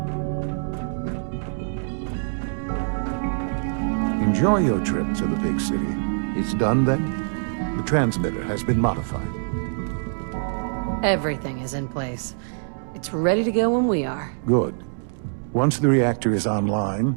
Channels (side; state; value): left; silent; digital silence